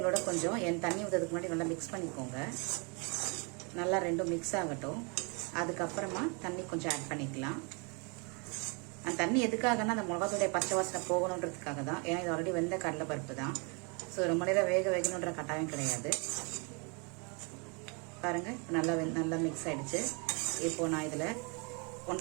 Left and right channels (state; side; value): quieter; left; 33.9 dB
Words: கொஞ்சம் தண்ணி ஊற்றுறதுக்கு முன்னாடி நல்லா மிக்ஸ் பண்ணிக்கோங்க. நல்லா ரெண்டும் மிக்ஸ் ஆகட்டும். அதுக்கப்புறமா தண்ணி கொஞ்சம் ஆட் பண்ணிக்கலாம். அந்த தண்ணி எதுக்காகனா அந்த மிளகாத்தூளுடைய பச்சை வாசனை போகணுன்றதுக்காக தான். ஏன்னா இது ஆல்ரெடி வெந்த கடலை பருப்பு தான். ஸோ ரொம்ப நேரம் வேகணுன்ற கட்டாயம் கிடையாது. பாருங்க, நல்லா மிக்ஸ் ஆயிடுச்சு. இப்போ நான் இதில்